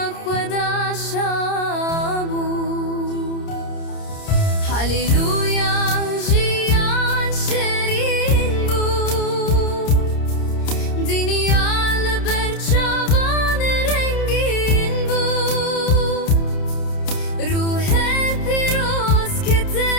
خدا شابو هلیلویا جیان شیرین بو دنیا لبرچوان رنگین بو روح پیروز که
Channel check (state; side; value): late; right; 30 ms